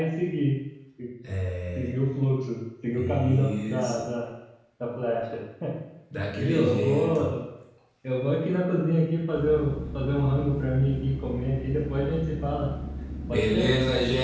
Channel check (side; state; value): both; identical; correlation 1.00